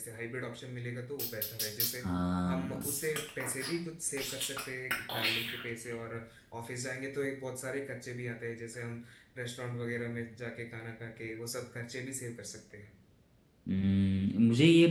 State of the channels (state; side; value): identical; both; correlation 1.00